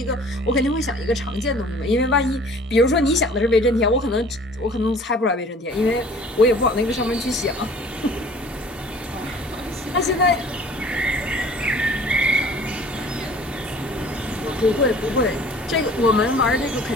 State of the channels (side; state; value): both; normal; correlation 0.49